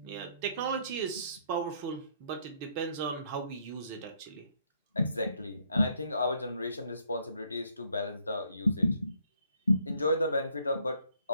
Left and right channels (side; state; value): both; inverted; correlation -0.68